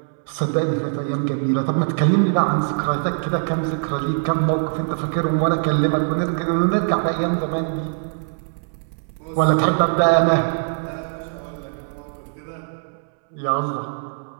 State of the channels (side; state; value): left; silent; 64 dB below the other